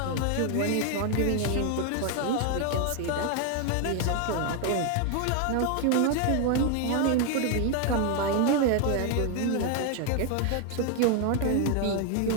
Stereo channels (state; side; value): different; both; correlation 0.01